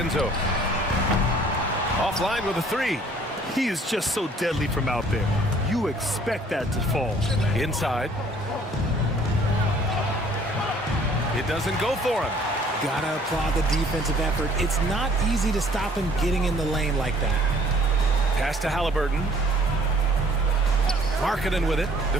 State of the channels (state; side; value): normal; both; correlation 0.57